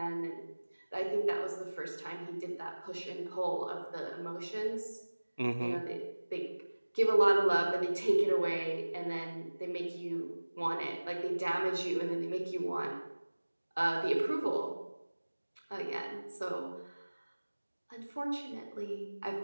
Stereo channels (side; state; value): both; inverted; correlation -1.00